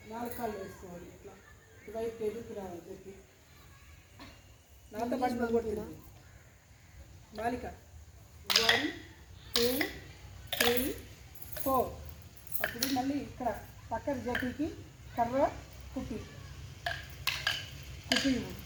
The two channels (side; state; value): both; identical; correlation 1.00